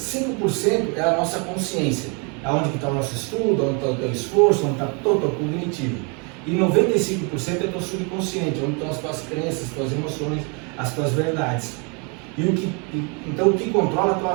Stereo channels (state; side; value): quieter; left; 33.7 dB